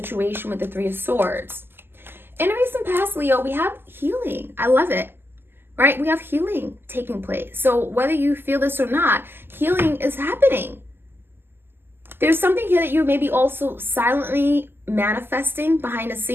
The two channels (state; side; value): late; left; 0.10 ms